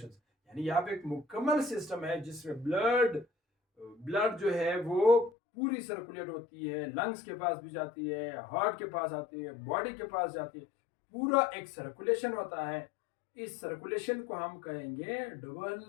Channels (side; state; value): right; drops out; at 5.3 s